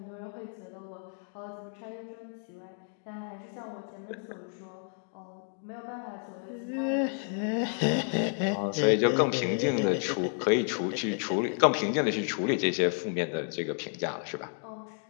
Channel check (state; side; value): silent; right; 57 dB below the other